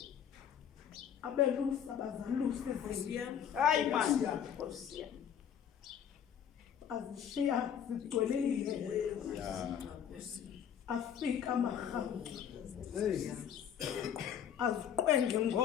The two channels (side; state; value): right; quieter; 8.8 dB